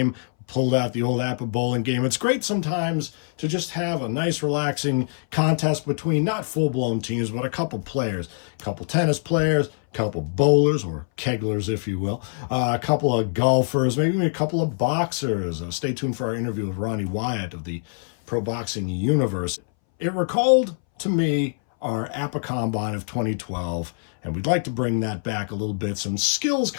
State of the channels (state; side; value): silent; right; 61 dB below the other